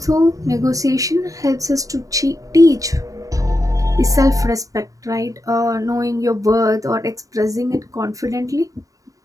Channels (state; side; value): late; left; 0.16 ms